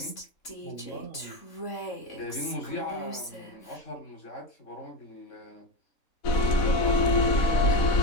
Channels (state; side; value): late; right; 3.5 ms